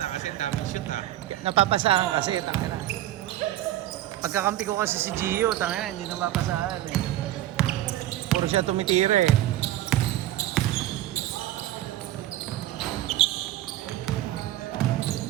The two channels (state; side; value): quieter; left; 14.1 dB